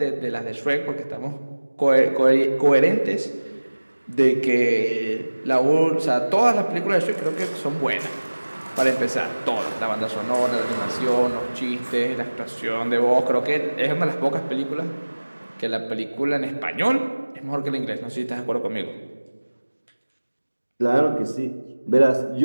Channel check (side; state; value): both; inverted; correlation -1.00